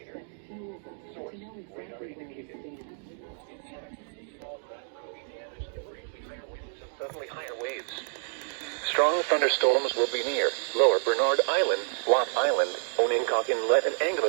Suddenly higher waves. Strong thunderstorms will be near Lower Bernard Island, Watt Island, Onencock Inlet, and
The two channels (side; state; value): left; silent; digital silence